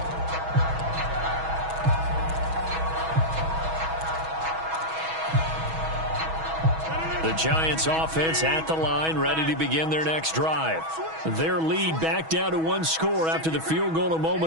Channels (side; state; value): left; late; 6.2 ms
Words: The Giants offense at the line, ready to begin their next drive. Their lead back down to 1 score after the field goal a